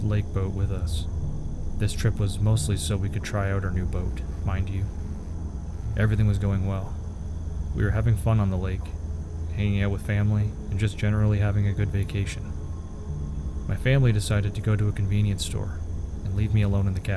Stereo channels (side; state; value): both; identical; correlation 1.00